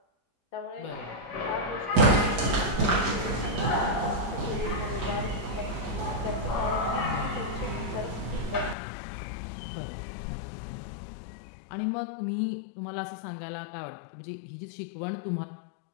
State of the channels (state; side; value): drops out; right; at 8.8 s